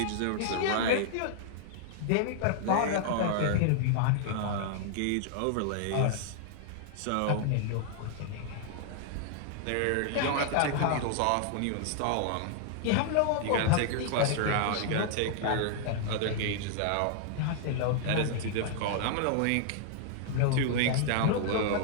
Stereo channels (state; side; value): different; both; correlation -0.01